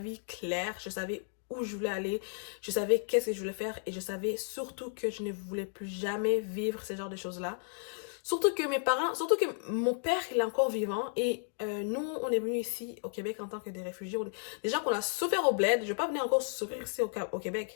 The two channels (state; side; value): silent; right; digital silence